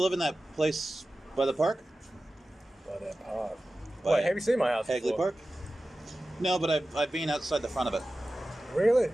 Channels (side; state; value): both; normal; correlation 0.95